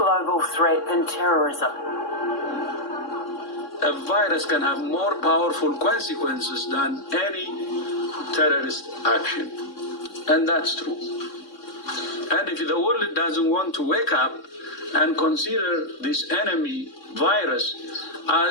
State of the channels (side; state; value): right; late; 3.6 ms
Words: threat than terrorism. A virus can have more powerful consequences than any terrorist action. And that's true. And if the world doesn't want to wake up and consider this enemy virus